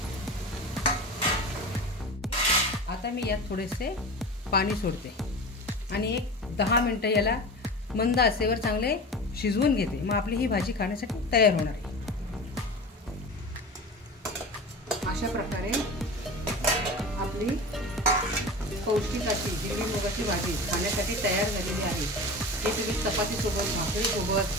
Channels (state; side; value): normal; both; correlation 0.31